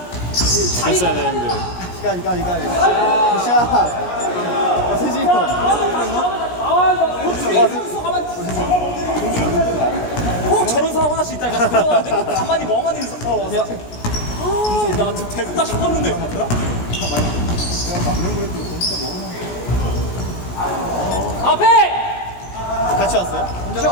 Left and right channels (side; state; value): right; late; 17 ms